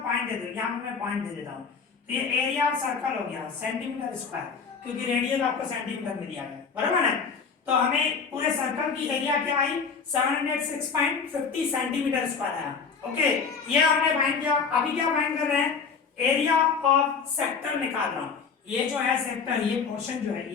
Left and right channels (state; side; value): quieter; right; 5.6 dB